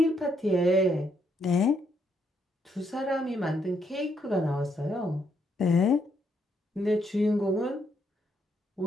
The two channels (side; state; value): both; normal; correlation 0.75